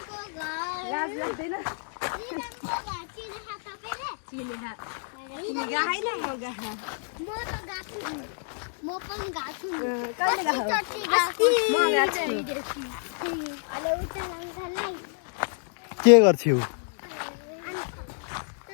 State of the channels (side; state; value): right; silent; digital silence